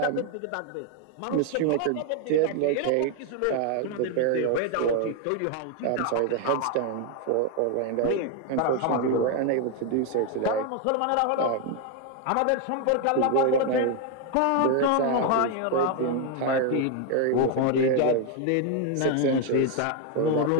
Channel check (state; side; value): different; both; correlation 0.01